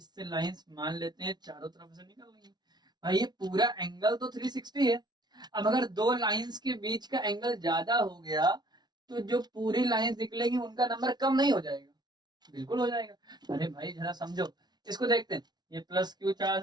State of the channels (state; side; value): late; left; 0.20 ms